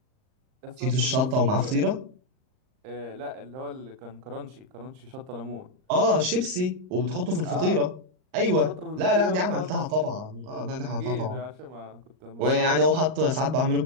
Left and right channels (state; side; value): late; left; 38 ms